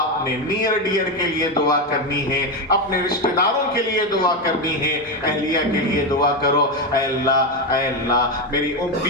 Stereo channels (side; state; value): both; normal; correlation 0.11